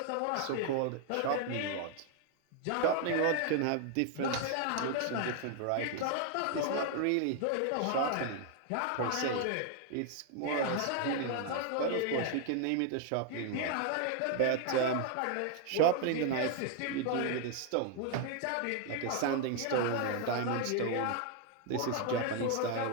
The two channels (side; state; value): both; different; correlation 0.00